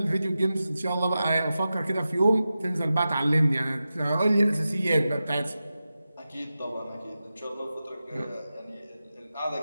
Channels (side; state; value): both; inverted; correlation -0.93